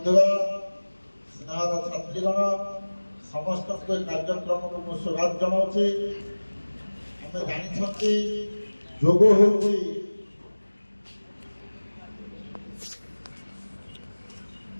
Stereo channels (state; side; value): inverted; both; correlation -1.00